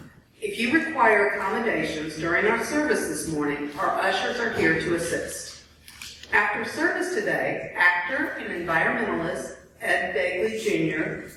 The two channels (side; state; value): both; identical; correlation 1.00